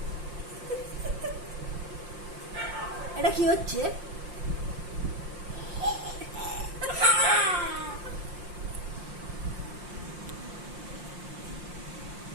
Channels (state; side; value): late; left; 5.7 ms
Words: এটা কি হচ্ছে?